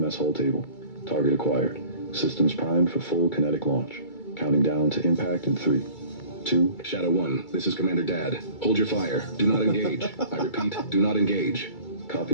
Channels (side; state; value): right; late; 2.3 ms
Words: hall table. Target acquired. Systems primed for full kinetic launch. Counting down to impact in 3, 2... Shadow 1, this is Commander Dad. Hold your fire. Do not engage. I repeat, do not engage.